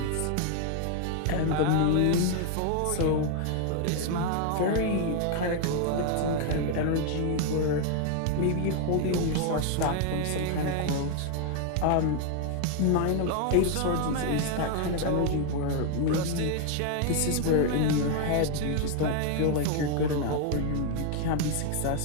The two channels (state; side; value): different; both; correlation 0.00